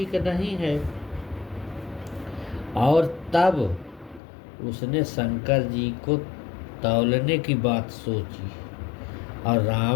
नहीं है, और तब उसने शंकर जी को तौलने की बात सोची और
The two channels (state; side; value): drops out; right; at 4.2 s